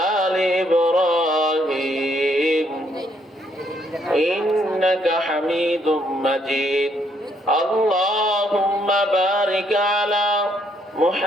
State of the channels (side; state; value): both; normal; correlation 0.71